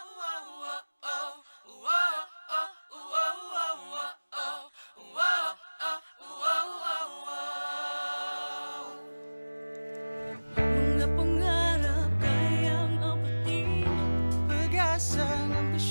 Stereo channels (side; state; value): both; inverted; correlation -1.00